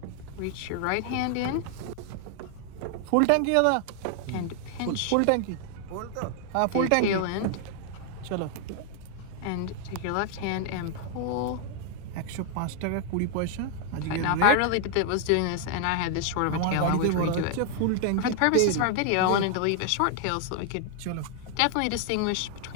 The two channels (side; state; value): both; different; correlation 0.00